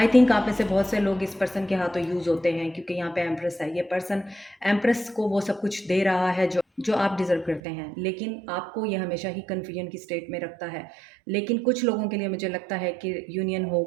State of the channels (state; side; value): drops out; left; at 7.6 s